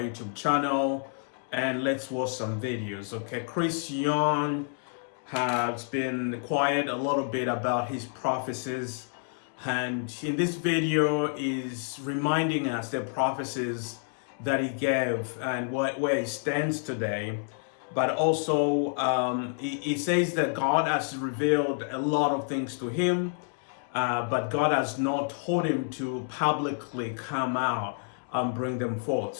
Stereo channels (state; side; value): silent; right; 59 dB below the other